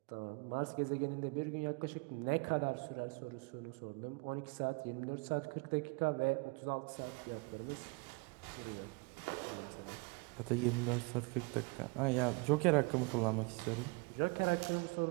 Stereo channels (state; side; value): quieter; left; 29.8 dB